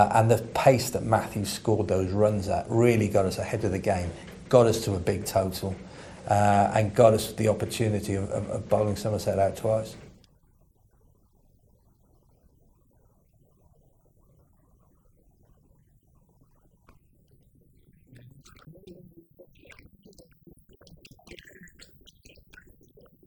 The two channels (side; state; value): both; identical; correlation 1.00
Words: the pace that Matthew scored those runs at really got us ahead of the game, got us to a big total. And got us the opportunity of bowling Somerset out twice. Oh, that's pulled away. It's a wonderful shot. That's a big 6